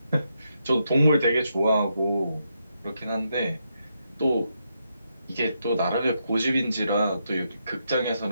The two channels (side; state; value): both; inverted; correlation -0.81